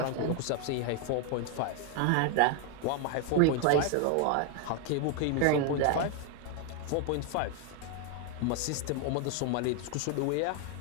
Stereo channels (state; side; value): different; both; correlation 0.01